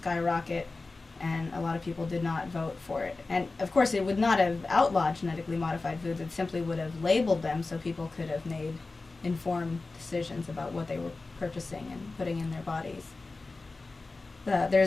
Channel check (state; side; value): quieter; right; 3.6 dB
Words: and a lot of people did not vote for it. And of course it would not have outlawed genetically modified foods, it simply would have labeled them so people could have made informed decisions about what they were purchasing and putting in their bodies.